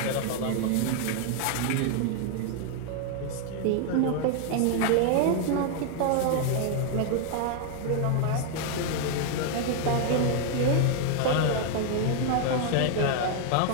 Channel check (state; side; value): different; both; correlation 0.00